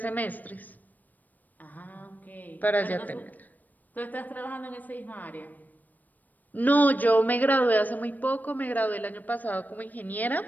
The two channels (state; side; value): late; right; 0.084 ms